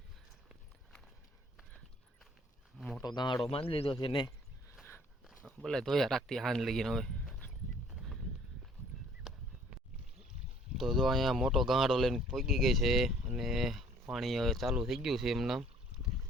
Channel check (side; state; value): both; normal; correlation 0.57